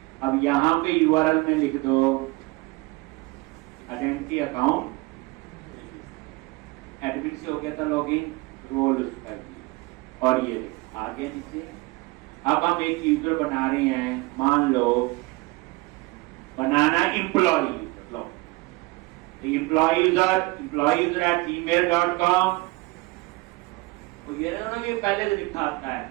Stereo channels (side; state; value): left; quieter; 23.3 dB